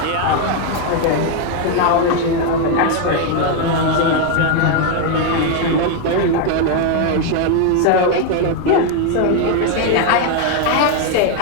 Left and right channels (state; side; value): different; both; correlation 0.01